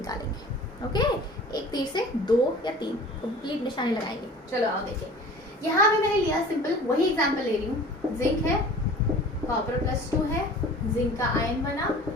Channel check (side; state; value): both; normal; correlation 0.43